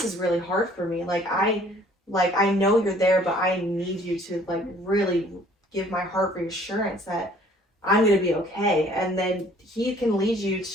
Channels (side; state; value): both; normal; correlation 0.57